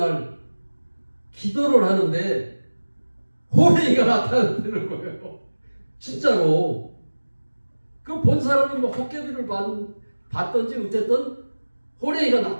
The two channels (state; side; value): inverted; both; correlation -1.00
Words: 기도를 하는데 호랭이가 나타나는 거예요. 진짜로. 그 본 사람은 뭐 헛개비를 봤던지 어쨌든 호랭이가